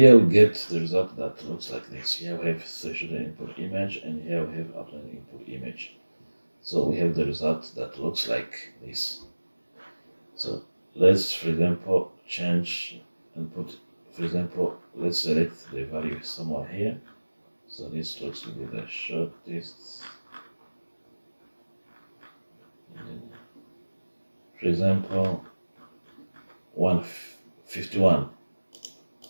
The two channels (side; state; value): both; inverted; correlation -1.00